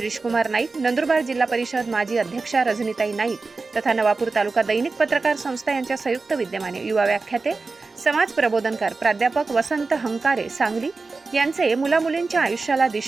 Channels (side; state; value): left; quieter; 3.9 dB